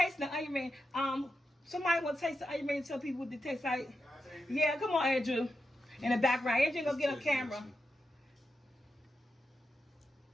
the onion ring. Somebody want to taste the onion ring and tell people what they taste like? Yeah, come on, Andrew. In the background. Andrew gonna get on camera.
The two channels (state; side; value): normal; both; correlation 0.88